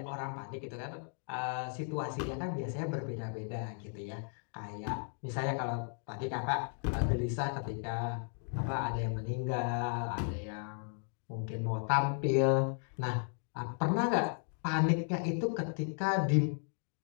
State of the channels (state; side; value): silent; right; 54 dB below the other